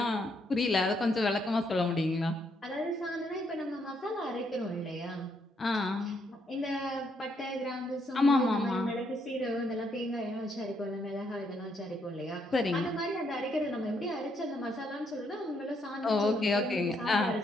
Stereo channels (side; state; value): both; normal; correlation 0.74